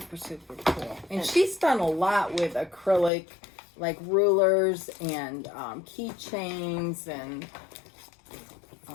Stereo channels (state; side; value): drops out; right; at 3.1 s